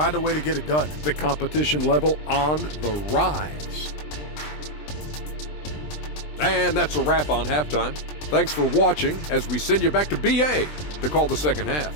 a way to get it done. The competition level on the rise. And that's a wrap on halftime. Thanks for watching as we send you back to BA to call the second half.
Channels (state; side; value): late; right; 20 ms